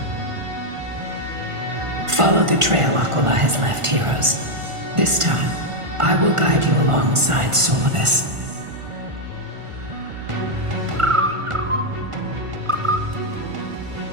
Follow the trail Aquila has left, heroes. This time, I will guide you alongside Solibus.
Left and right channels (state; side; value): late; left; 1.5 ms